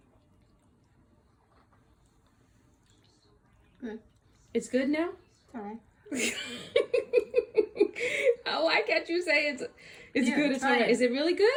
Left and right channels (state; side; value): identical; both; correlation 1.00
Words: Good. It's good now? All right. Oh, why can't you say it's Yeah, good? It's all try right. it. Is it really